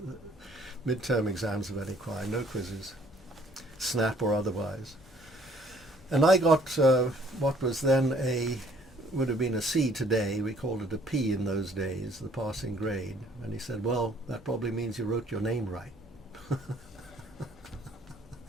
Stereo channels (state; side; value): normal; both; correlation 0.60